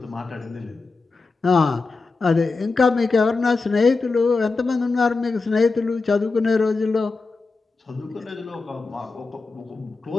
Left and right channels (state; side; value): quieter; right; 4.0 dB